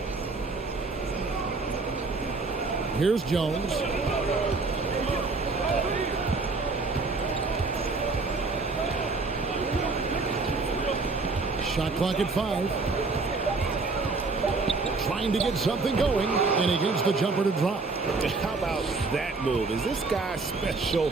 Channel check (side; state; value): left; quieter; 3.9 dB